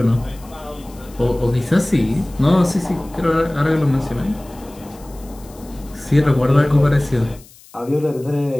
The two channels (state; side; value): noise; left; hiss, 24 dB below the sound